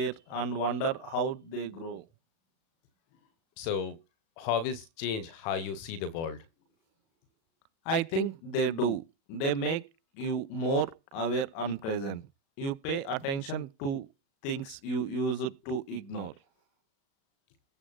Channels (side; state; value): right; late; 36 ms